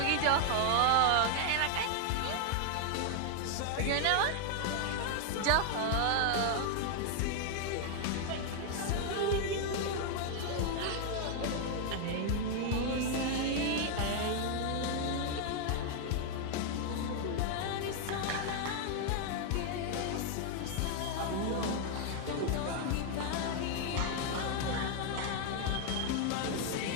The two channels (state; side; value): different; both; correlation 0.00